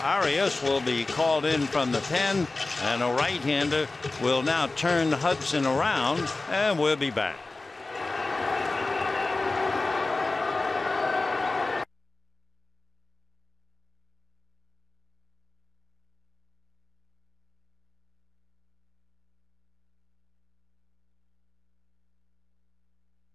Arias will be called in from the pen, and a right-hander will now turn Hudson around, and we'll be back.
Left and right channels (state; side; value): quieter; right; 3.3 dB